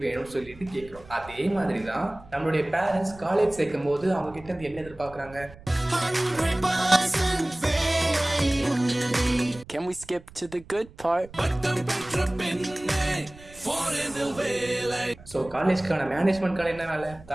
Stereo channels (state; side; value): noise; right; rumble, 21 dB below the sound